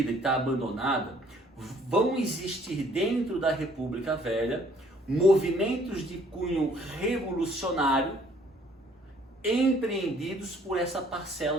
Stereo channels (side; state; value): both; normal; correlation 0.60